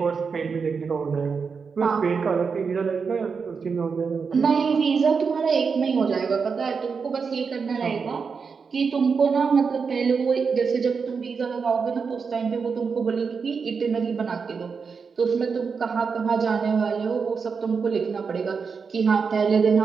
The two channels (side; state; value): left; quieter; 5.5 dB